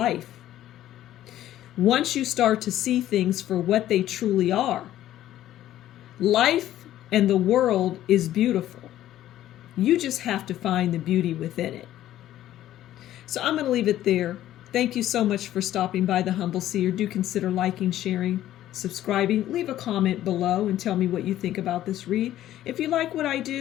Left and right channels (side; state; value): right; quieter; 13.0 dB